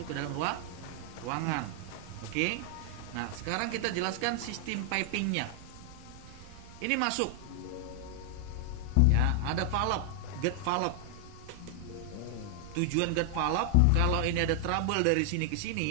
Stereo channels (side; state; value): both; different; correlation 0.00